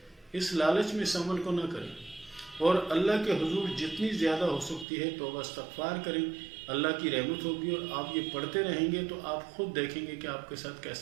اس لالچ میں اس عمل کو نہ کریں، اور اللہ کے حضور جتنی زیادہ ہو سکتی ہے توبہ استغفار کریں، اللہ کی رحمت ہوگی، اور آپ یہ پڑھتے رہیں گے تو آپ خود دیکھیں گے کہ آپ کے ساتھ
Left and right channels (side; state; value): left; drops out; at 4.9 s